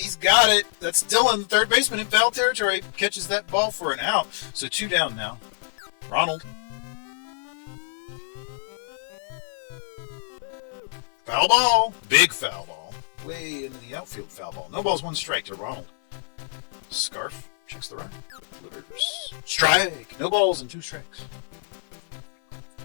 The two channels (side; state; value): right; silent; 61 dB below the other